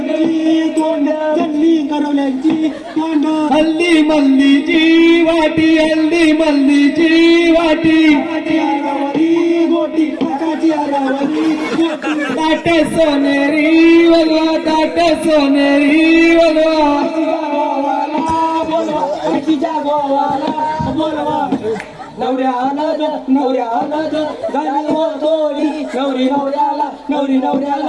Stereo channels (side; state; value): both; identical; correlation 1.00